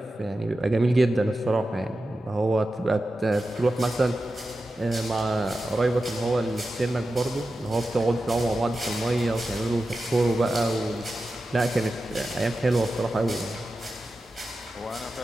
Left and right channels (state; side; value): normal; both; correlation 0.92